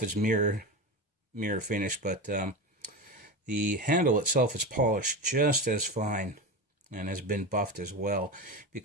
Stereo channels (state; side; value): normal; both; correlation 0.22